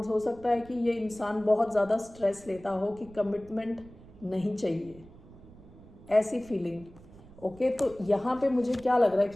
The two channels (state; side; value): noise; right; rumble, 21 dB below the sound